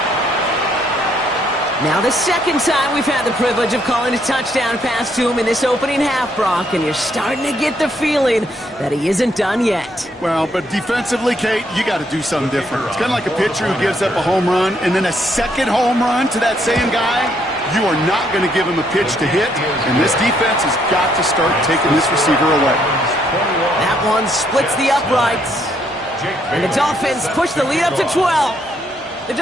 Now the 2nd time we've had the privilege of calling a touchdown pass to him in this opening half, Brock, and you're starting to get the feeling that he isn't done yet. Well, but defensively, Kate, you got to do something different. It's kind of like a pitcher who gives up a home run and then a 2nd home run to that same guy. You are not going to give him a pitch to hit, and this defense has got to start taking this receiver away. That one splits the uprights, and the Dolphins push the lead up to 12. The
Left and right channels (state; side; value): normal; both; correlation 0.72